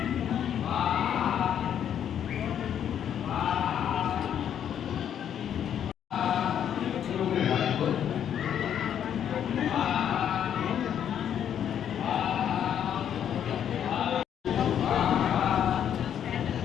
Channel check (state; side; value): quieter; right; 9.4 dB